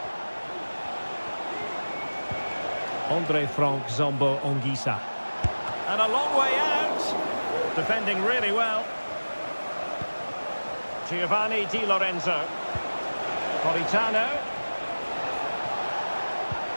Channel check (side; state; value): both; inverted; correlation -1.00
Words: Andre Frank Zombo Anguissa. And a long way out. Defending really well. Giovanni Di Lorenzo. Politano.